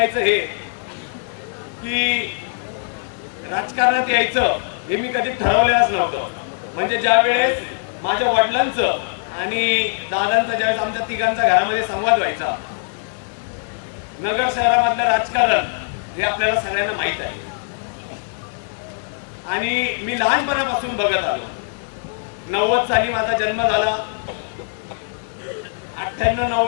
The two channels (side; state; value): right; silent; 65 dB below the other